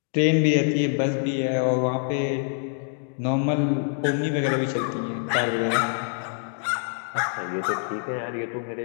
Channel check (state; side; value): silent; right; 58 dB below the other